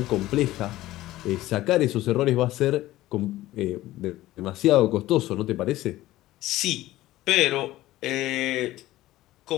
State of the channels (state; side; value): quieter; right; 16.1 dB